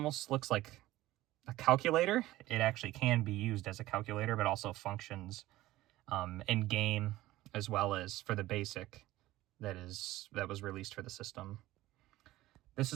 looks like a calculator. It actually can be used as a calculator, but also functions in game as well as for the basic that was released for the system. This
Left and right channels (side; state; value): left; quieter; 16.5 dB